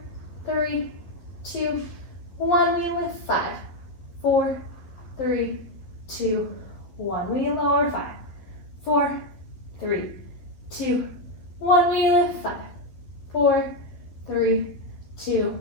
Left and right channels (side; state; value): right; late; 12 ms